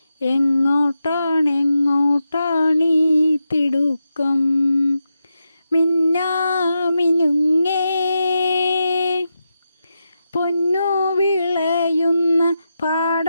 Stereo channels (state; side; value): inverted; both; correlation -0.88